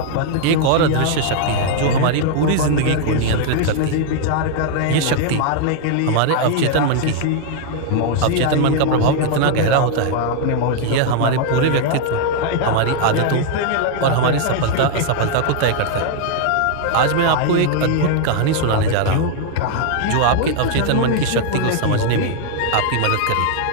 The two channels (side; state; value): both; different; correlation 0.00